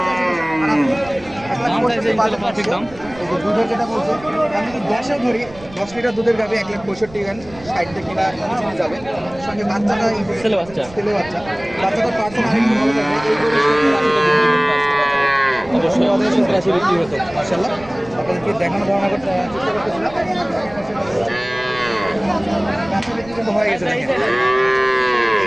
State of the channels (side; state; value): right; noise; rumble, 20 dB below the sound